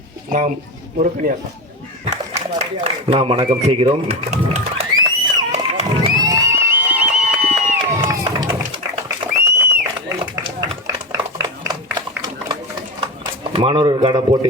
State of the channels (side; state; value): both; normal; correlation 0.18